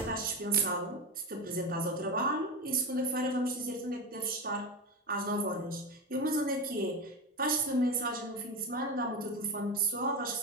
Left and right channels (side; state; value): both; normal; correlation 0.19